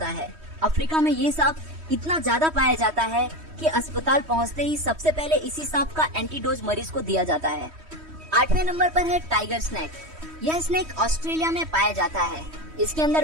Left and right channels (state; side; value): late; left; 3.1 ms